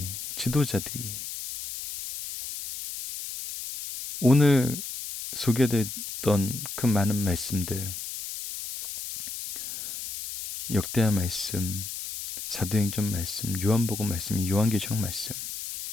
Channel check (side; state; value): left; noise; hiss, 8 dB below the sound